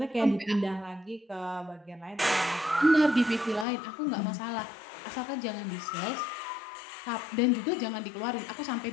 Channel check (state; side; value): drops out; right; at 3.7 s